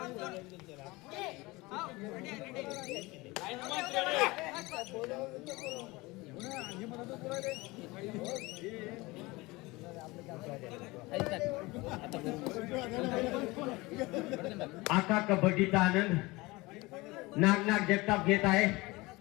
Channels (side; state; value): right; quieter; 22.5 dB